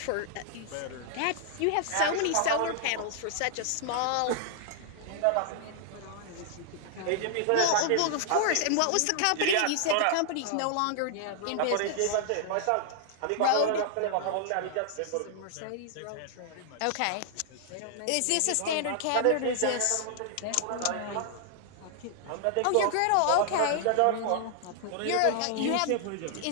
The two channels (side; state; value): both; different; correlation -0.01